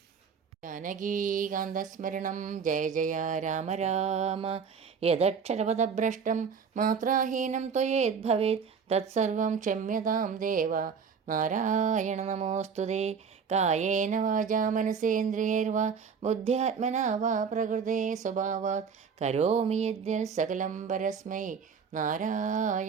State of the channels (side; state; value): left; quieter; 6.3 dB